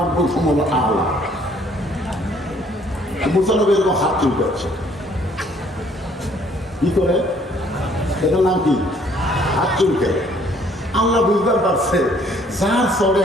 সমল আল্লাহ। মুসা নবী এরকম হাত চুলকাচ্ছে, কি করে? এটার নাম কি? হাত চুলকে। আল্লাহ বুঝতে পারছে যার চরে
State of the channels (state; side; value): normal; both; correlation 0.62